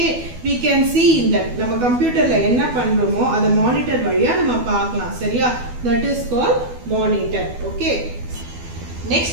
we can see in that நம்ம கம்ப்யூட்டர்ல என்ன பண்றோமோ அத monitor வழியா நம்ம பார்க்கலாம். சரியா? That is called monitor. Okay, next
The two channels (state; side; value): late; left; 12 ms